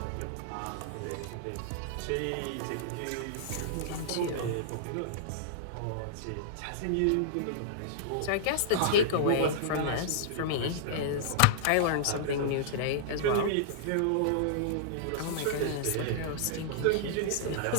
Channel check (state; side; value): different; both; correlation -0.02